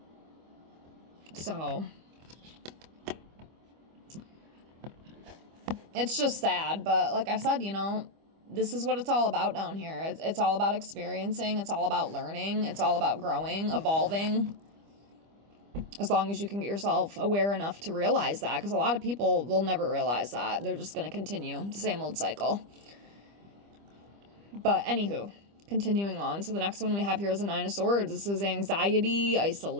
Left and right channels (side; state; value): left; late; 25 ms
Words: So, it's just sad, but like I said, this is what it's all about down here. It's all about experiencing, it's all about learning, it's all about growing, evolving. As long as you can get yourself aware enough to realize that, because a lot of people will never realize that. They're just going to continue the same old cycle. But anywho, continuing on. So the next one we have here is a Nine of Swords. This is anxiety,